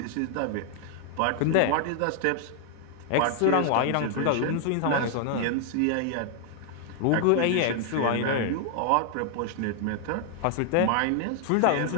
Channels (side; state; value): both; different; correlation 0.00